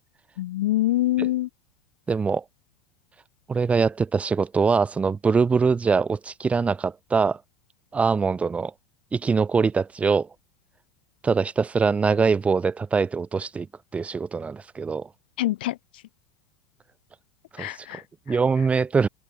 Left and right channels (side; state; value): left; quieter; 3.1 dB